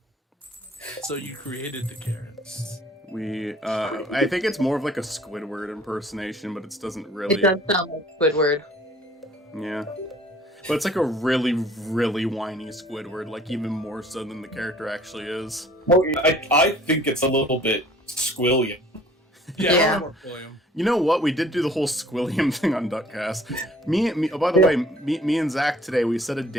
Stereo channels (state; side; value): normal; both; correlation 0.53